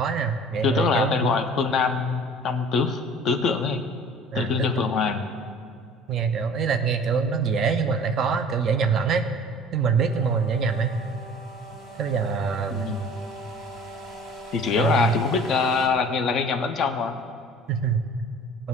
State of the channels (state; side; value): normal; both; correlation 0.46